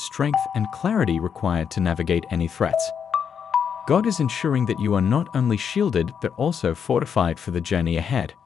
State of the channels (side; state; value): right; quieter; 7.3 dB